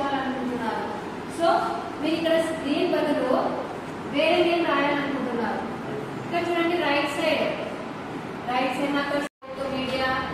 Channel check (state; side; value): identical; both; correlation 1.00